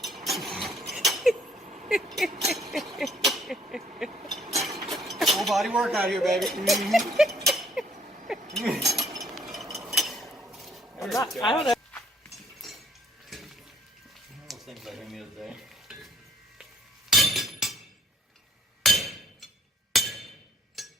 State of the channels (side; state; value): both; normal; correlation 0.64